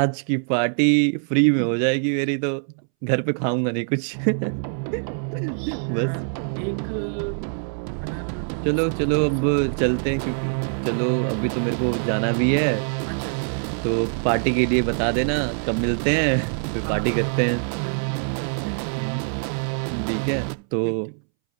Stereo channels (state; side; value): silent; left; 63 dB below the other